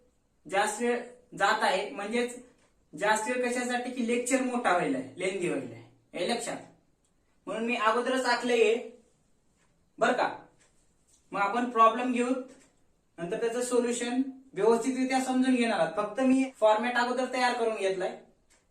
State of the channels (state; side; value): identical; both; correlation 1.00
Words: जास्त वेळ जात आहे, म्हणजेच जास्त वेळ कशासाठी की लेक्चर मोठा व्हायला आहे, लेंदी व्हायला आहे. हे लक्षात. म्हणून मी अगोदरच आखलंय बर का. मग आपण प्रॉब्लेम घेऊ, नंतर त्याचं सोल्युशन व्यवस्थितरित्या समजून घेणार आहात. फक्त मी फॉर्मॅट अगोदर तयार करून घेतलाय,